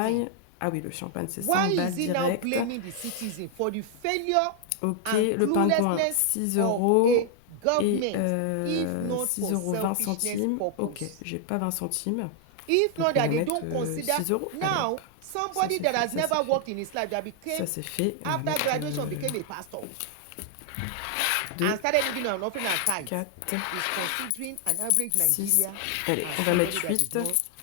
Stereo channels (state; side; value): different; both; correlation 0.00